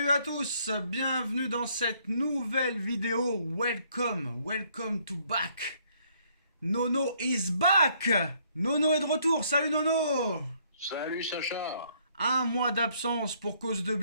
à tous, bienvenue dans cette nouvelle vidéo. Welcome to back. Nono is back. Nono est de retour. Salut Nono. Salut Sacha. Un mois d'absence pour cause de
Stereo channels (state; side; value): inverted; both; correlation -0.66